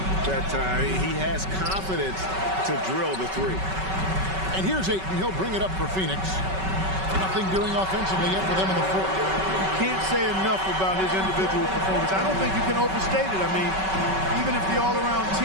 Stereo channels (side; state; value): left; late; 5.3 ms